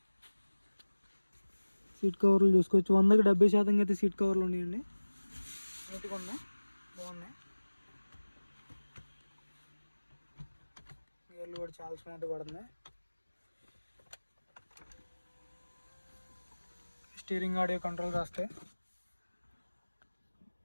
సీట్ కవర్లు చూసుకోవచ్చు, 100కి 70% అయితే సీట్ కవర్లు ఉన్నాయండి. నీట్గా ఉన్నాయి, బాగున్నాయి. గేర్లు కూడా చాలా స్మూత్ పడుతుంది. స్టీరింగ్ ఆడియో కంట్రోల్ రాస్తే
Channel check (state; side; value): inverted; both; correlation -1.00